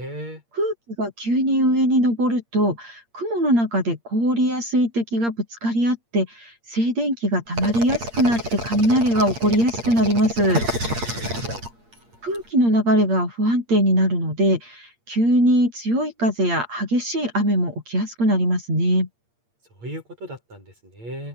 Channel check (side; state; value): left; late; 8.6 ms